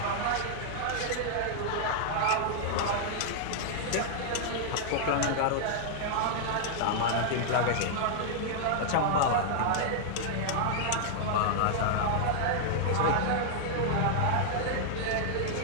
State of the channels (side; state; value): both; different; correlation -0.01